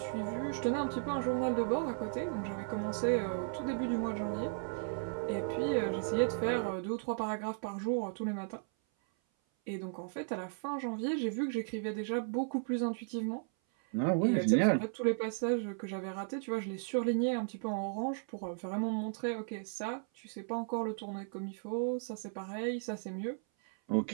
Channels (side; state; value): left; silent; 54 dB below the other